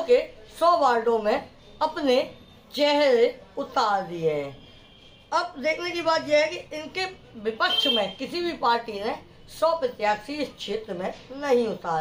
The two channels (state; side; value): identical; both; correlation 1.00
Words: के 100 वार्डों में अपने चेहरे उतार दिए हैं। अब देखने की बात यह है कि इनके विपक्ष में किसी भी पार्टी ने 100 प्रत्याशी इस क्षेत्र में नहीं